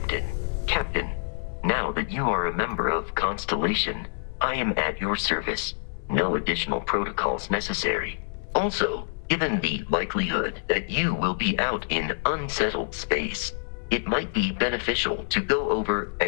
Captain, now that you are a member of Constellation, I am at your service. No additional protocols necessary. Also, given the likelihood that you will be out in unsettled space, it might be beneficial to go over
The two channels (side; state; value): right; silent; digital silence